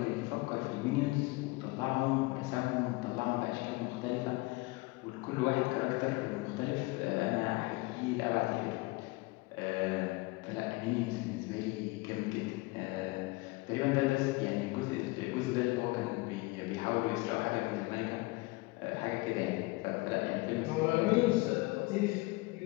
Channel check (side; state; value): right; quieter; 23.3 dB